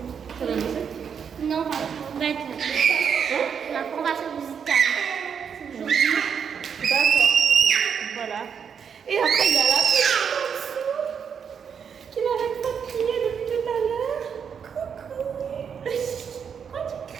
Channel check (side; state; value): left; quieter; 7.1 dB